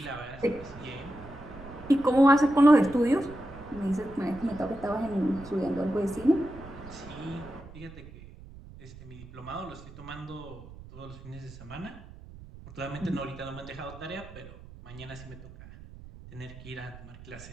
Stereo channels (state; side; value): noise; right; rumble, 17 dB below the sound